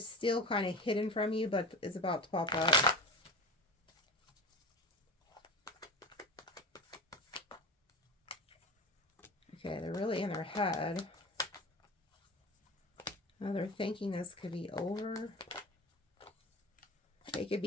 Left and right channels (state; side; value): normal; both; correlation 0.30